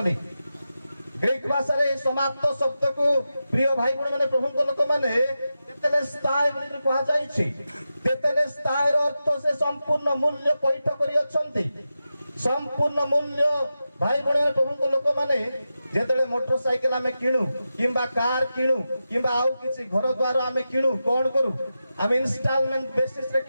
ଗ୍ରୀକ ଭାଷାରେ ଏହି ସମାପ୍ତ ଶବ୍ଦକୁ ପ୍ରିୟ ଭାଇ ଭଉଣୀ ମାନେ ପ୍ରଭୁଙ୍କ ଲୋକମାନେ ତେତେଲେସ୍ତାଇ ବୋଲି କୁହାଯାଇଛି। ତେତେଲେସ୍ତାଇର ଅର୍ଥ ସେ ସମ୍ପୂର୍ଣ୍ଣ ମୂଲ୍ୟ ପଇଠ କରିଅଛନ୍ତି। ସମ୍ପୂର୍ଣ୍ଣ ମୂଲ୍ୟ ଭାଇ ଭଉଣୀ ପ୍ରଭୁଙ୍କ ଲୋକମାନେ ଯେତେବେଳେ ମୋଟର ସାଇକେଲ ଆମେ କିଣୁ କିମ୍ବା କାର କିଣୁ କିମ୍ବା ଆଉ କିଛି ଘର ଦ୍ୱାର ଆମେ କିଣୁ କଣ କରୁ ଆମେ ଇନଷ୍ଟଲମେଣ୍ଟ ବେସିସରେ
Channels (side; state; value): both; inverted; correlation -0.91